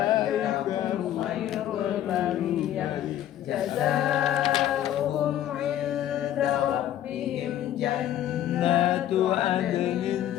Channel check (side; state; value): right; quieter; 11.9 dB